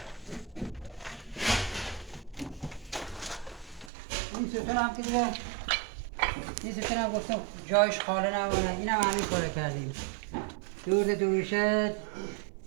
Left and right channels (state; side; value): drops out; left; at 3.9 s